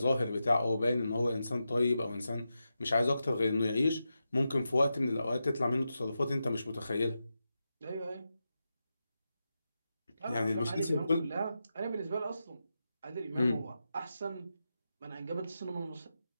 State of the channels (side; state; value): both; inverted; correlation -0.89